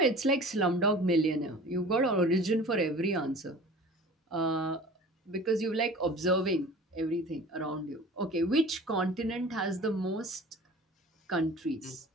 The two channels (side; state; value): both; normal; correlation 0.42